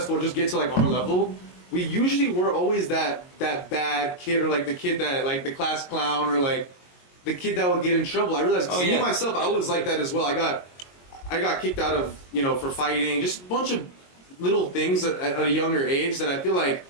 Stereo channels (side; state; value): right; late; 22 ms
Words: or just get to like our level. We usually were always that bad kid, or like the kid that like the class clown, or like the kid that would get in trouble. I realized me myself, I was like that as well. I got kicked out of, you know, for fighting, just a bunch of little things at a younger age that I feel like